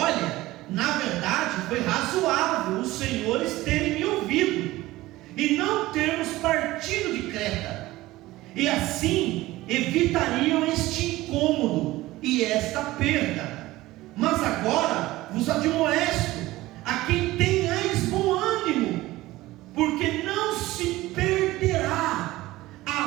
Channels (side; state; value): left; quieter; 17.8 dB